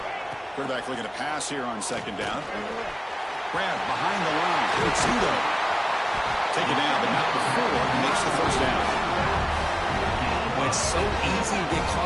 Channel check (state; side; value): identical; both; correlation 1.00